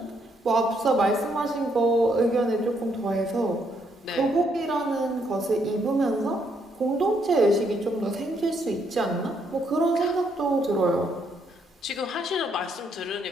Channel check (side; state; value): both; normal; correlation 0.73